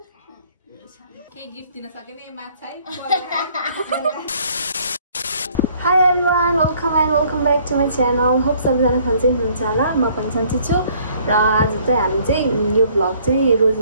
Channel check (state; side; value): inverted; both; correlation -0.60